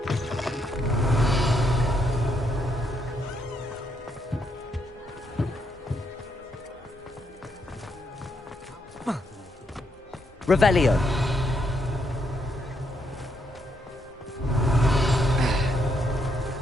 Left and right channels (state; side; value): normal; both; correlation 0.76